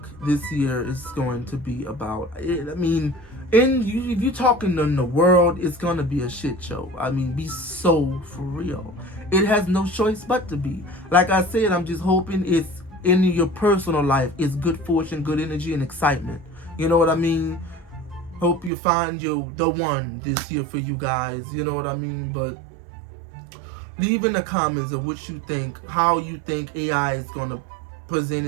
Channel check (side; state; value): left; drops out; at 18.7 s